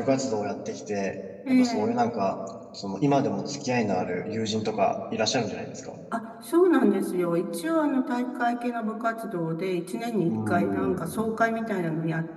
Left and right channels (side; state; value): both; identical; correlation 1.00